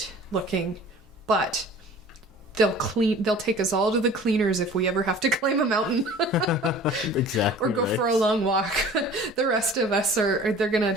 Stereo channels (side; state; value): both; normal; correlation 0.45